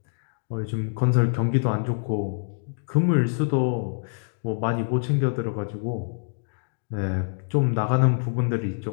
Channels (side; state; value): right; silent; digital silence